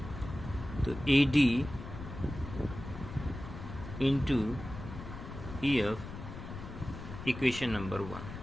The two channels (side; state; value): left; noise; rumble, 10 dB below the sound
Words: तो AD into EF, equation number 1।